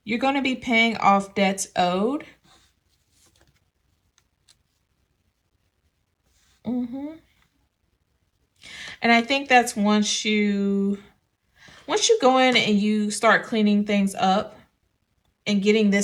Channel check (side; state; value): both; identical; correlation 1.00